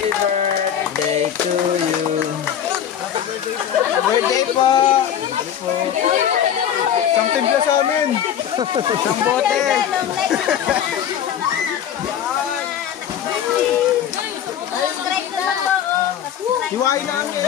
birthday to you. Birthday po! Isang timpla sa amin! Isang bote! Hiwain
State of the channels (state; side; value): quieter; right; 9.5 dB